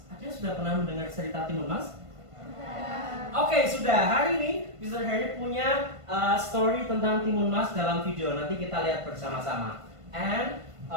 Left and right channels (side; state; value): left; late; 1.5 ms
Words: Ada yang sudah pernah mendengar cerita Timun Mas? Oke, sudah. Hari ini Mr. Harry punya story tentang Timun Mas dalam video. Nanti kita lihat bersama-sama. And